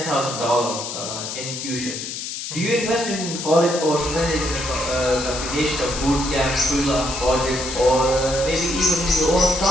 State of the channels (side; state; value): left; noise; hiss, 6 dB below the sound